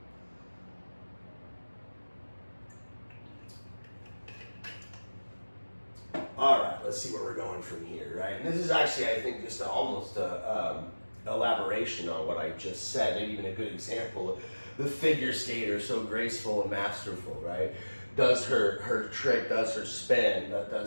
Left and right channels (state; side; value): inverted; both; correlation -1.00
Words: All right, let's see where we're going from here, right? And this is actually, I think, just almost a elaboration on what I just said, maybe even a good example. The figure skater, so graceful and masterful, right? Does her trick, does her spin,